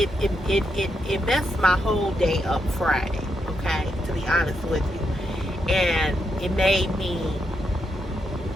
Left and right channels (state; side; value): normal; both; correlation 0.81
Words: messed my whole day up Friday, okay, to be honest with you. And it made me